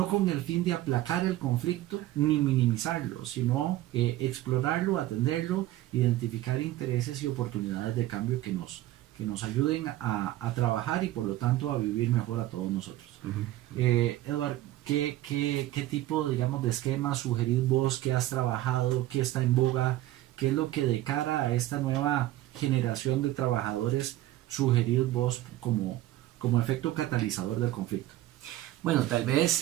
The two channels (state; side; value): quieter; left; 15.1 dB